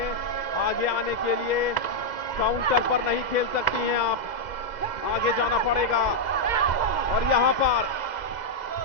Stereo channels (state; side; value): late; right; 2.0 ms